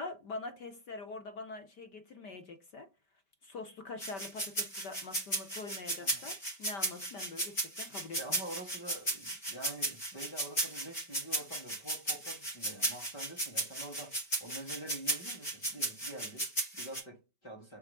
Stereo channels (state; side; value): late; right; 5.1 ms